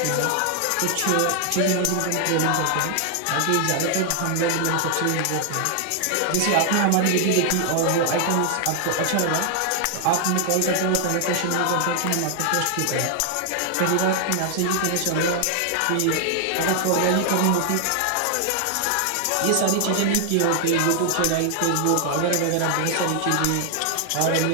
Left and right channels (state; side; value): different; both; correlation 0.00